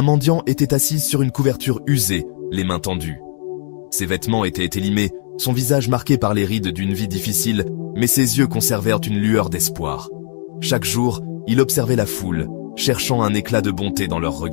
mendiant était assis sur une couverture usée, les mains tendues. Ses vêtements étaient élimés, son visage marqué par les rides d'une vie difficile, mais ses yeux conservèrent une lueur d'espoir. Chaque jour, il observait la foule, cherchant un éclat de bonté dans leurs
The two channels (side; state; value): right; silent; digital silence